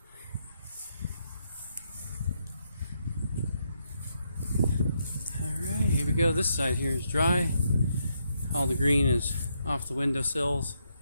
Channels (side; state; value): both; inverted; correlation -0.78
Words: Alright, here we go. This side here is dry. All the green is off the windowsills.